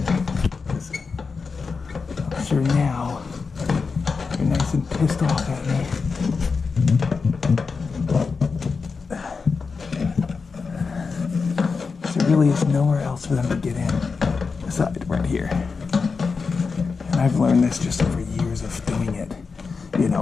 I'm sure now you're nice and pissed off at me. There really is nowhere else for them to get in aside right here. And I've learned this just over years of doing it. You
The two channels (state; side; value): quieter; right; 4.9 dB